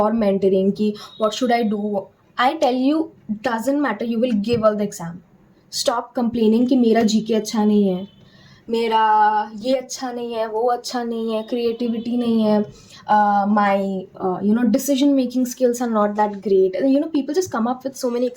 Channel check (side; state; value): both; identical; correlation 1.00